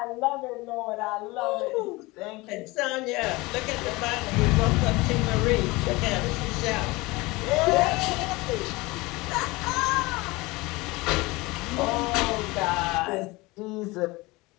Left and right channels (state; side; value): quieter; right; 22.6 dB